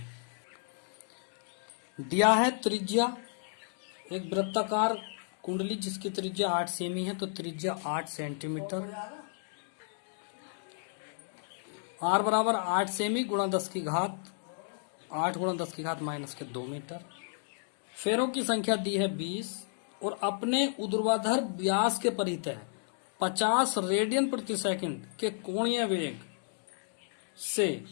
दिया है त्रिज्या, एक वृत्ताकार कुंडली जिसकी त्रिज्या 8 सेमी है, तो त्रिज्या 8 सेंटीमीटर, आर बराबर 8 सेमी गुणा 10 की घात 8 गुणा 10 की घात माइनस के 2 मीटर। फेरों की संख्या दी है 20 और अपने ऊर्ध्वाधर व्यास के परितः 50 रेडियन प्रति सेकंड के कोणीय वेग से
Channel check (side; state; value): right; silent; digital silence